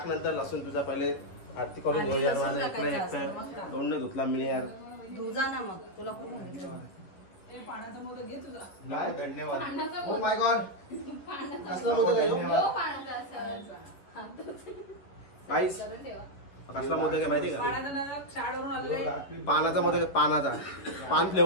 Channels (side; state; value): right; late; 10 ms